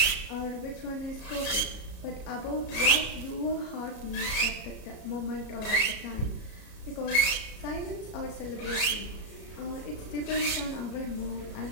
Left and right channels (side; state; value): right; late; 34 ms